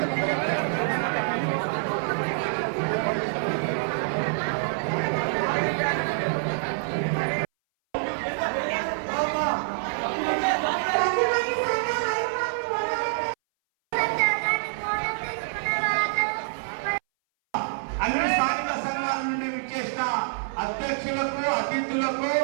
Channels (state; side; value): silent; left; 59 dB below the other